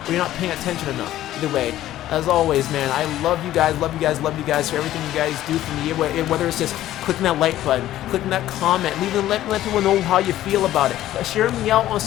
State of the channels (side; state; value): right; quieter; 13.6 dB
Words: or you're not paying attention enough, either way. As always, man, I love you guys for everything you guys do for me. Whether it's just clicking that like button, clicking that comment, let people know how you feel about it. Share me out on